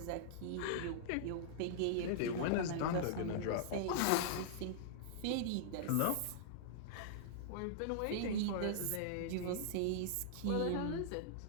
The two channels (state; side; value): different; both; correlation -0.02